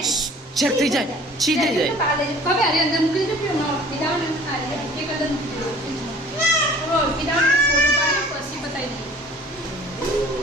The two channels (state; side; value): normal; both; correlation 0.49